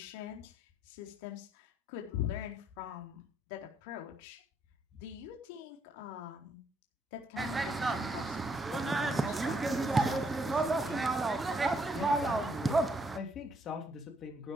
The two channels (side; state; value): both; normal; correlation 0.72